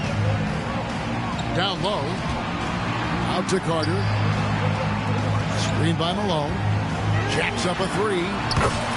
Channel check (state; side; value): identical; both; correlation 1.00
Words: Down low. Out to Carter. Screen by Malone. Jacks up a three.